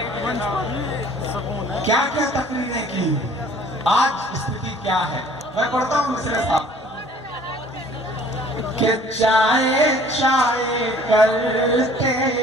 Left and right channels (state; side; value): normal; both; correlation 0.53